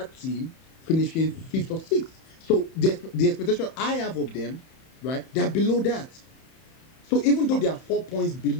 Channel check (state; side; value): late; right; 31 ms